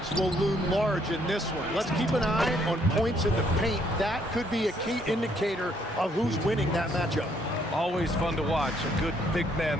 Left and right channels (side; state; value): both; normal; correlation 0.68